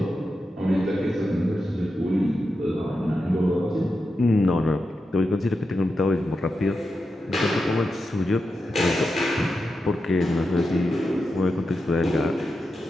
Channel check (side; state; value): both; normal; correlation 0.89